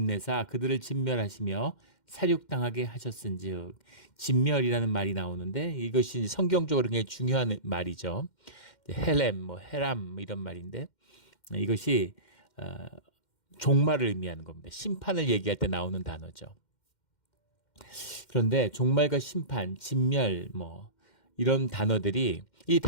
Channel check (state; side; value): late; right; 2.1 ms